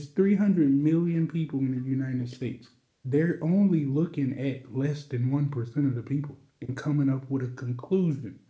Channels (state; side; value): identical; both; correlation 1.00